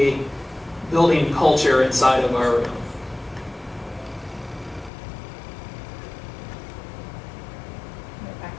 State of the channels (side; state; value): right; drops out; at 4.9 s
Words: building culture inside of our room. Back